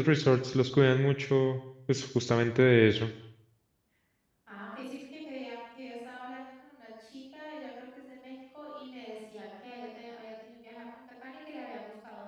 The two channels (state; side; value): identical; both; correlation 1.00